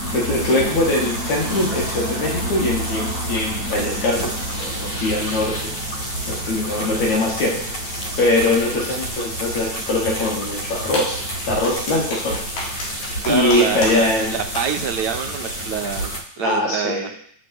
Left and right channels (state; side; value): late; right; 9.1 ms